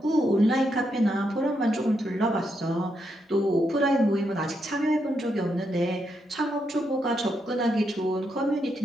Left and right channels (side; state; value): both; normal; correlation 0.81